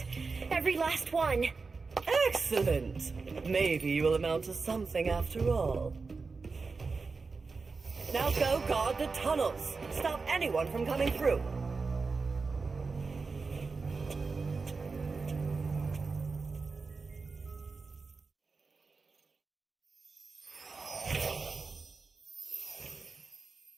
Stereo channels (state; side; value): quieter; left; 4.4 dB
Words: Every last one. Excellent. Maybe you will amount to something after all. Now go guard the tunnels. Stop anyone from coming through.